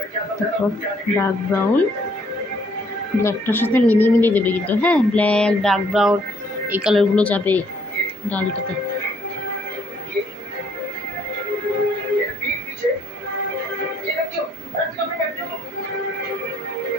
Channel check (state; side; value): normal; both; correlation 0.66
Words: তারপর ডার্ক ব্রাউন ব্ল্যাকটার সাথে মিলিয়ে মিলিয়ে দেবে কিন্তু। হ্যাঁ, ব্ল্যাক ডার্ক ব্রাউন এই কালারগুলো যাবে ডালটাতে।